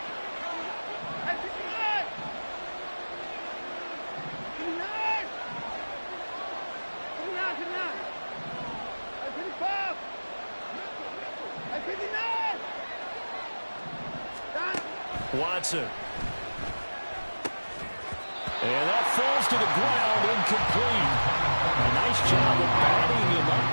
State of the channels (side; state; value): both; inverted; correlation -1.00